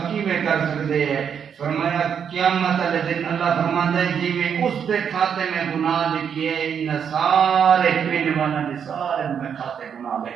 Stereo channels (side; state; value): left; quieter; 7.6 dB